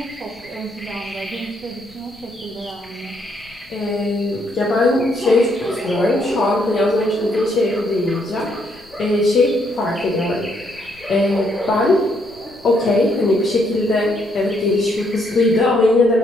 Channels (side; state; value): left; noise; rumble, 27 dB below the sound